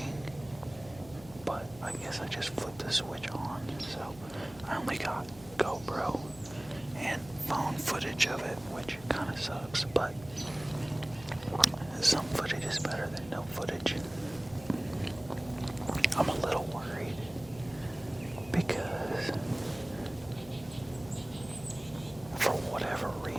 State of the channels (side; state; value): left; noise; hum, 19 dB below the sound